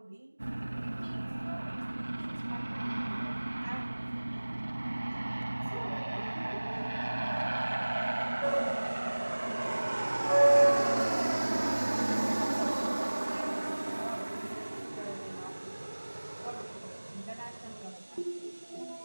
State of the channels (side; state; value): both; inverted; correlation -1.00